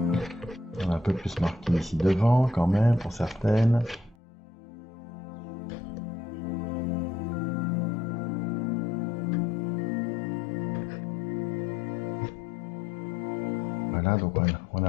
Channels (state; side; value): drops out; right; at 4.2 s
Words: On a un peu plus marqué ici devant quand même pour certaines. Voilà, donc on